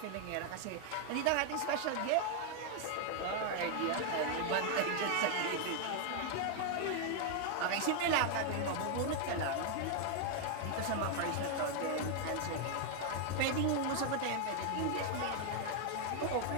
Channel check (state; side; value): different; both; correlation 0.00